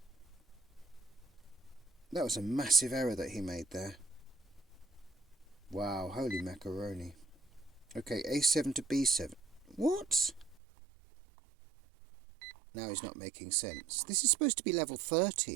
That was a massive error that he made there. Wow, holy macaroni. Okay, a7 to b7. What? Now he's not making sense. This is supposed to be level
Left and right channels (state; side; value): drops out; left; at 10.6 s